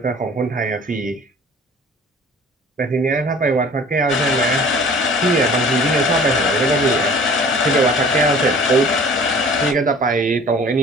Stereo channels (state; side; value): normal; both; correlation 0.47